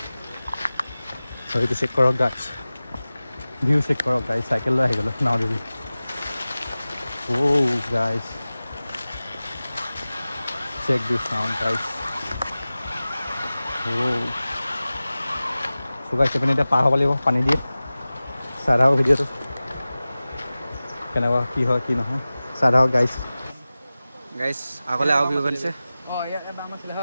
সেইটো চেক কৰক গাইছ ভিউ চেক কৰক গাইছ চাইকেল লৈ আহি গ'লোঁ নাও দিবি গাইছ চেক দিছ চাউণ্ড গাইছ চুগাইছে পিনে এতিয়া পাৰ হ'ব লাগিব পানী দিয়ে চাই থাকক ভিডিঅ'টো কেনেকুৱা কি হয় কি নহয় চাই থাকক গাইছ আগলৈ আৰু ভিউ বনিছে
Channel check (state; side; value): inverted; both; correlation -0.97